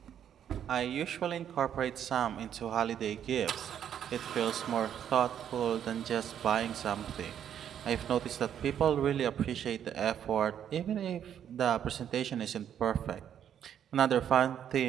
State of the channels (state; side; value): quieter; left; 9.4 dB